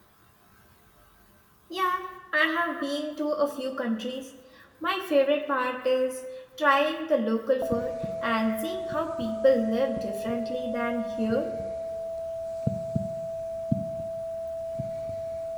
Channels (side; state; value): both; identical; correlation 1.00